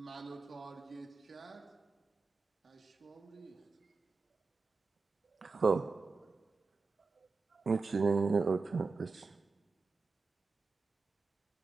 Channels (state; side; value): quieter; left; 4.3 dB